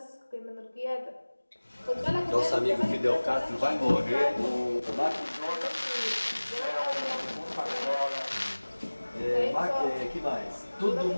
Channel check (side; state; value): both; inverted; correlation -1.00